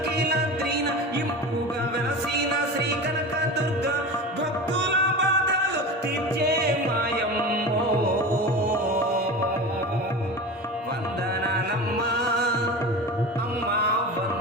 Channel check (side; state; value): both; normal; correlation 0.30